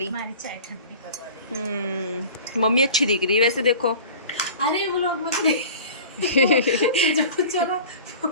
हमारी चाय ठंडी करवा ली। मम्मी अच्छी दिख रही है वैसे देखो। अरे वो लोग मत चलो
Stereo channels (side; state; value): both; inverted; correlation -0.40